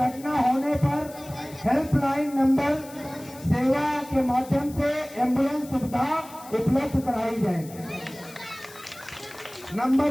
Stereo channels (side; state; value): left; noise; hiss, 19 dB below the sound